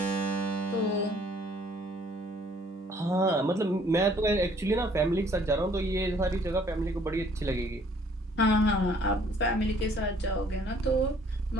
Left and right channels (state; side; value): normal; both; correlation 0.59